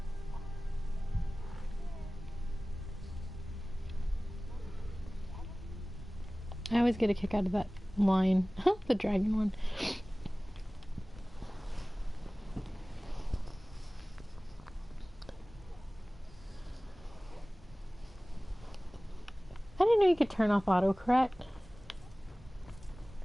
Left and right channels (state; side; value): normal; both; correlation 0.98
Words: I always get a kick out of that line. The dragon one. I didn't know you could turn off autocorrect.